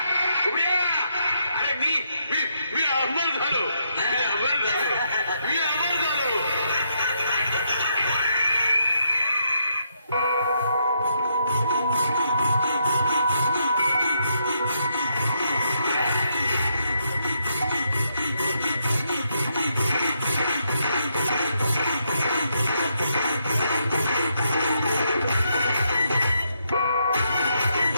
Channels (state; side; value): inverted; both; correlation -0.77